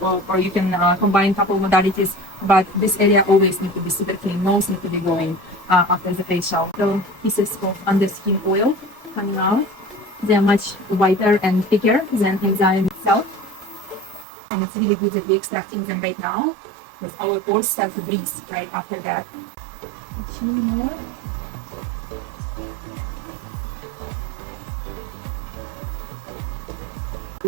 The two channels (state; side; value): drops out; left; at 14.2 s